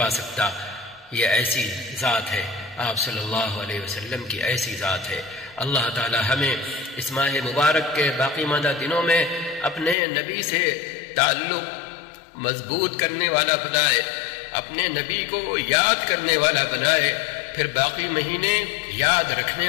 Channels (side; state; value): right; drops out; at 10.0 s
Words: سکتا۔ یہ ایسی ذات ہے، آپ صلی اللہ علیہ وسلم کی ایسی ذات ہے۔ اللہ تعالی ہمیں اس ماہ مبارک کے باقی ماندہ دنوں میں اپنے نبی سے تعلق مضبوط کرنے والا بنائے، اپنے نبی کو یاد کرنے والا بنائے، پھر باقی مہینے یاد رکھنے